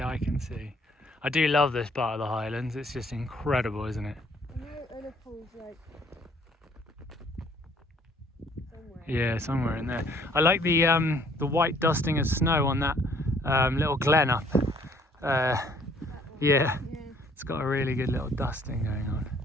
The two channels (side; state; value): both; normal; correlation 0.61